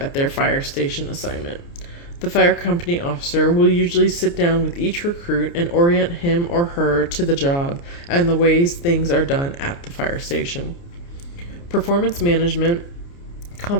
their fire station assignment. The fire company officer will usually sit down with each recruit and orient him or her to the job and the ways things are done at the fire station. Performance management,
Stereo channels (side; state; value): right; late; 29 ms